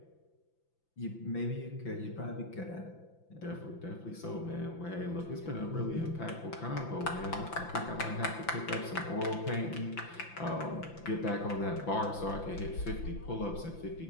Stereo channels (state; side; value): late; right; 5.9 ms